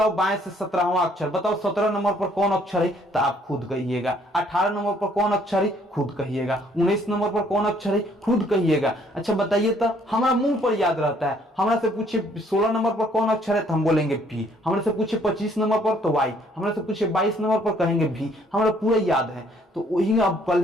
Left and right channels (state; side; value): normal; both; correlation 0.63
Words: बाएं से 17वां अक्षर, बताओ 17 नंबर पर कौन अक्षर है? तो आप खुद कहिएगा। 18 नंबर पर कौन अक्षर है? खुद कहिएगा। 19 नंबर पर कौन अक्षर है? खुद कहिएगा। अच्छा बताइए, तो हमारा मुंह पर याद रहता है। हमरा से पूछे 16 नंबर पर कौन अक्षर है, तो हम बोलेंगे P। हमरा से पूछे 25 नंबर पर तो Y। हमरा से पूछे 22 नंबर पर कहेंगे V। हमारा पूरा याद है। तो वही अब